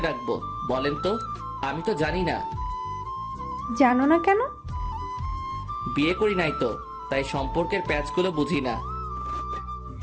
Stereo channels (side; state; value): both; identical; correlation 1.00